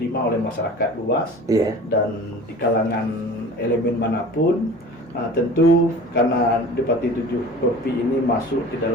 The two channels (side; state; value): both; normal; correlation 0.41